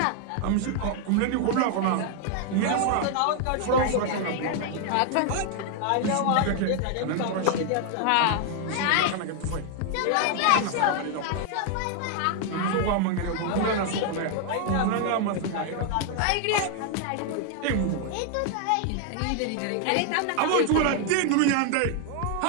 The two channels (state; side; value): different; both; correlation 0.00